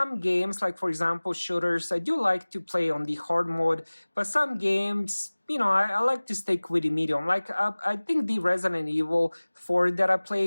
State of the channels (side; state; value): both; inverted; correlation -1.00